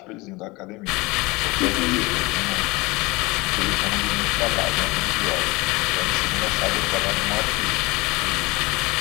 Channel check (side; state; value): right; quieter; 23.8 dB